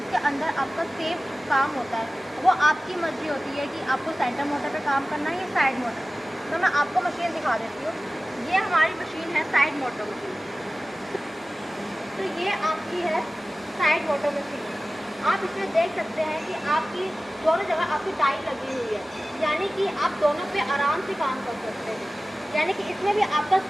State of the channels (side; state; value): both; normal; correlation 0.97